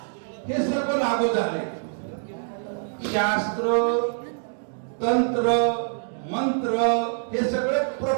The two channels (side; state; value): left; silent; digital silence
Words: हे सर्व लागू झाले. शास्त्र, तंत्र, मंत्र हे सगळे